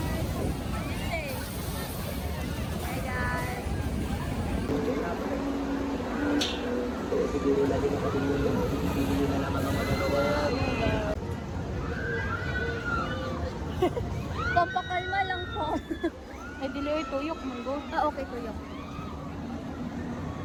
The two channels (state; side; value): identical; both; correlation 1.00